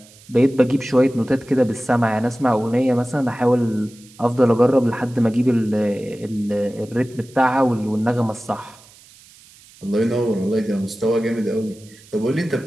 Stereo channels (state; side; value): noise; right; hiss, 25 dB below the sound